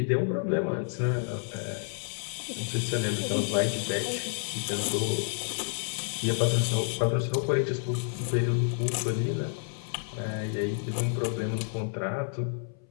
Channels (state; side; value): silent; right; 58 dB below the other